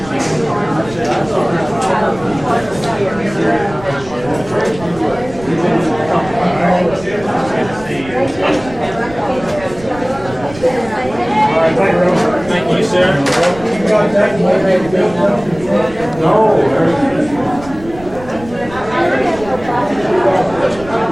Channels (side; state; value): right; noise; rumble, 17 dB below the sound